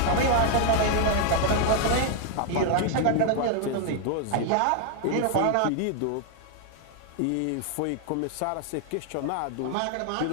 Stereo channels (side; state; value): both; different; correlation 0.00